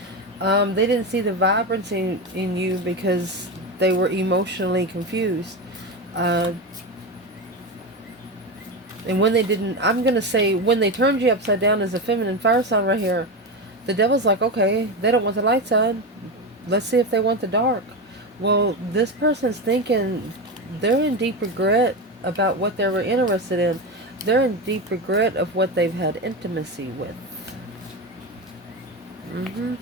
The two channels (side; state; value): both; normal; correlation 0.18